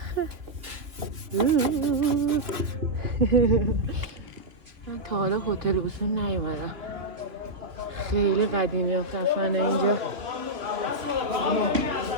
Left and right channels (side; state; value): left; late; 3.1 ms